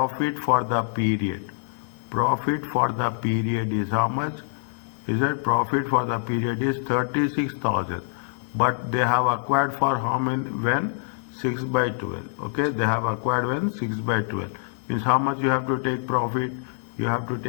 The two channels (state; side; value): silent; right; digital silence